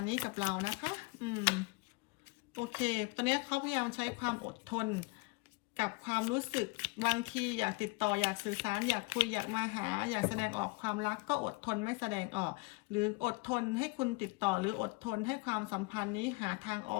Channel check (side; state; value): right; quieter; 26.5 dB